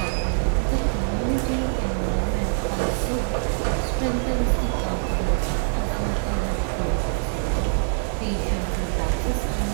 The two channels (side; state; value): left; silent; 62 dB below the other